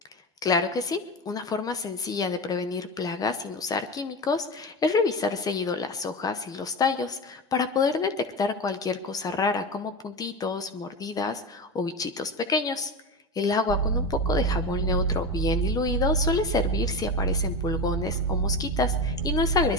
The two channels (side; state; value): both; normal; correlation 0.22